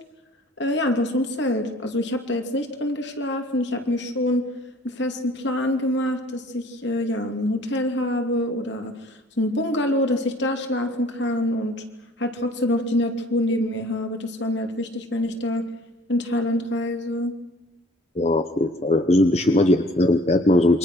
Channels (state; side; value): normal; both; correlation 0.53